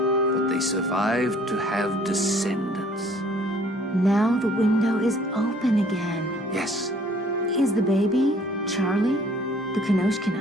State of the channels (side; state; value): both; normal; correlation 0.57